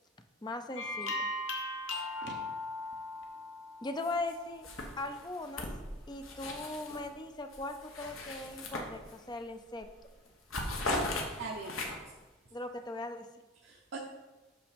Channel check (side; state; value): both; normal; correlation 0.33